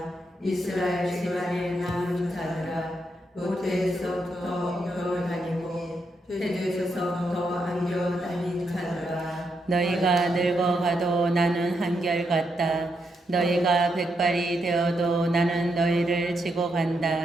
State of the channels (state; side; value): normal; both; correlation 0.81